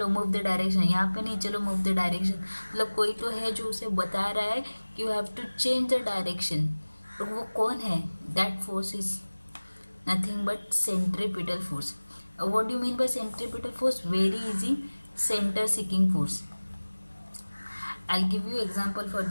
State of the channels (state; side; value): inverted; both; correlation -1.00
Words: मूव द डायरेक्शन, यहाँ पे नहीं, चलो मूव द डायरेक्शन। मतलब कोई तो है जो उसे बता रहा है कि you have to change the direction. तो वो कौन है, that force is nothing but centripetal force. What do mean by centripetal force, very easy, centre seeking force. I will give you example for